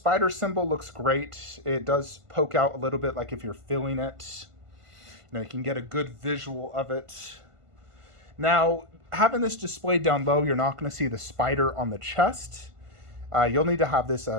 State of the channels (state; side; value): late; left; 1.5 ms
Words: symbol looks great. It does poke out a little bit like if you're feeling it. You can get a good visual of it. Now, having this displayed down low, you're not going to see the spider on the chest. You'll need to have this